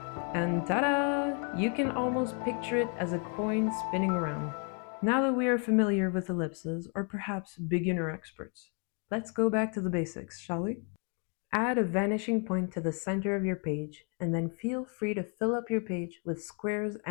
And ta-da! You can almost picture it as a coin spinning around. Now that we are familiar with ellipses, or perhaps beginner experts, let's go back to the basics, shall we? Add a vanishing point to the center of your page, and then feel free to fill up your page with squares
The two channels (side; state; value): right; quieter; 38.4 dB